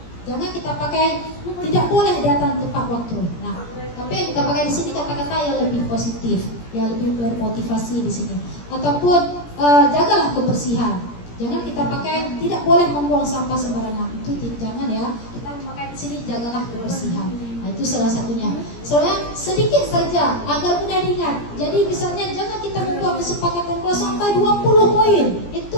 Jangan kita pakai tidak boleh datang tepat waktu. Nah, tapi kita pakai di sini kata-kata yang lebih positif, yang lebih bermotivasi di sini. Ataupun jagalah kebersihan. Jangan kita pakai tidak boleh membuang sampah sembarangan. Itu jangan ya. Kita pakai di sini jagalah kebersihan. Nah, itu salah satunya. Soalnya sedikit saja agar mudah diingat. Jadi misalnya jangan kita membuat kesepakatan kelas sampai 20 poin.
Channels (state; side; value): late; right; 17 ms